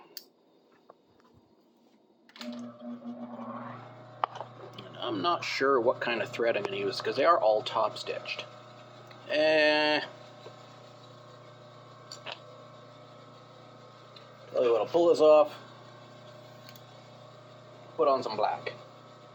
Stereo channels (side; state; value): both; identical; correlation 1.00